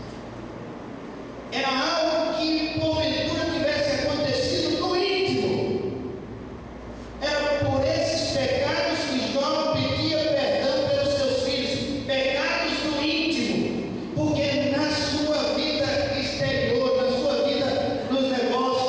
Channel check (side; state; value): both; identical; correlation 1.00